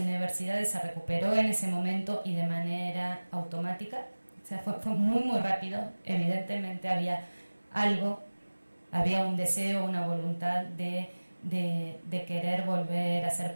se recuperó en ese momento y de manera automática. O sea, fue muy, muy rápido. Evidentemente había un deseo, una voluntad de querer volver a hacer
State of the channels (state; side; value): inverted; both; correlation -1.00